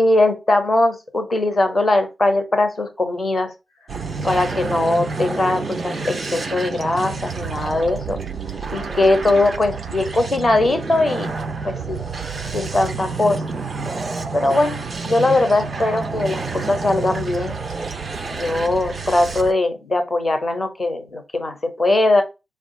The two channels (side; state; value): both; normal; correlation 0.89